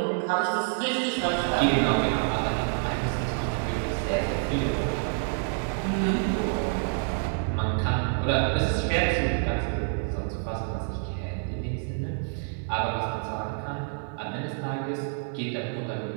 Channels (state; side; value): silent; left; 55 dB below the other